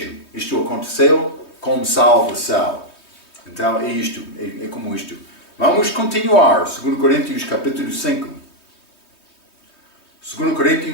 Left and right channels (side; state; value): right; late; 3.2 ms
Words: Isto aconteceu com salvação. Então é isto. É como isto. Vamos continuar. 2 Coríntios capítulo 5. 2